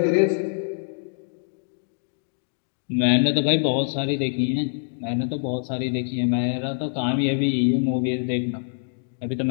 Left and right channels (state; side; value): silent; right; digital silence